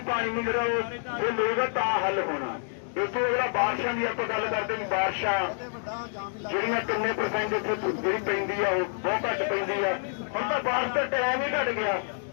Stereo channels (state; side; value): silent; right; digital silence